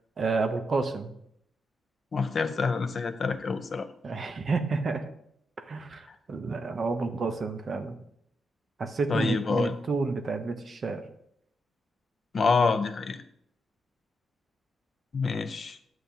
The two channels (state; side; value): normal; both; correlation 0.83